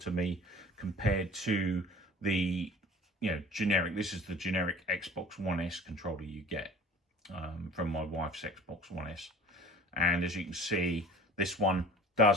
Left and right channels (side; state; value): both; normal; correlation 0.43